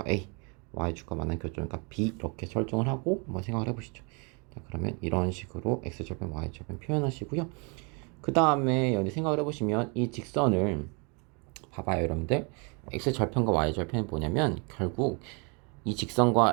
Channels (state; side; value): quieter; left; 33.7 dB